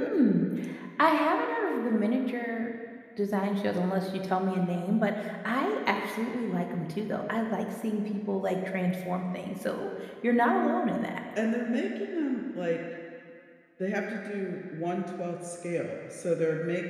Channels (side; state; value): both; identical; correlation 1.00